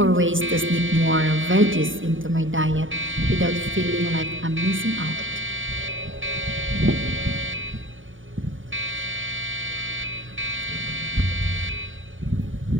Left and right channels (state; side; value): late; left; 0.57 ms